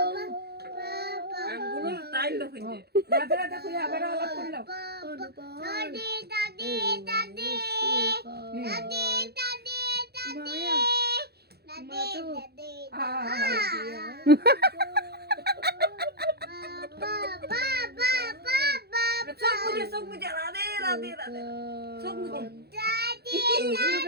রাধে রাধে করে আবার আলাপ করলো চোখ মুজে রাধে রাধে রাধে চোখ মুজে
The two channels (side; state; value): left; late; 0.47 ms